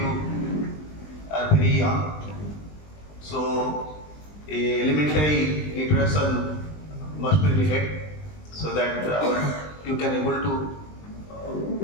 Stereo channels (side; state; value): right; late; 20 ms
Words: are very young. So, a elementary introduction must be needed so that you can able to